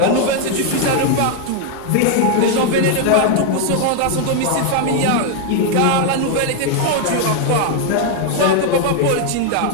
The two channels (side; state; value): both; different; correlation 0.00